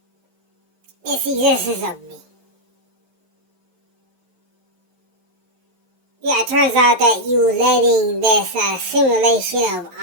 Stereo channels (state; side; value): late; left; 11 ms